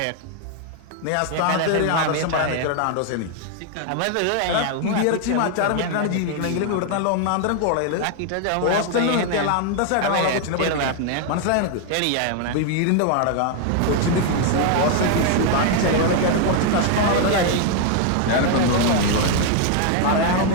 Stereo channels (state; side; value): different; both; correlation 0.00